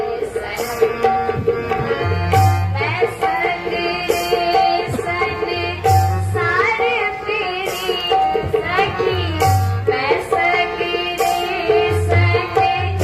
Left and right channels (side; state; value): both; identical; correlation 1.00